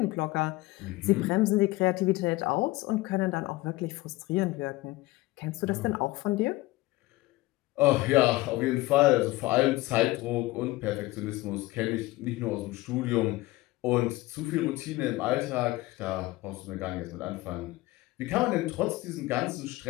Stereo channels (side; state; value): right; quieter; 19.5 dB